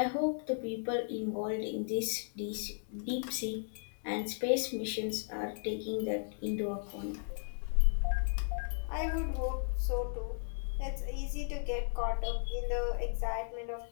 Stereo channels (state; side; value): silent; right; 54 dB below the other